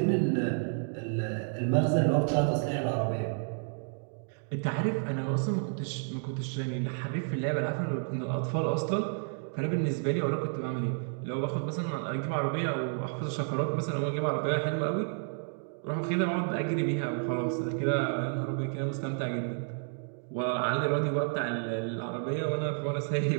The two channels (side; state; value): left; silent; 57 dB below the other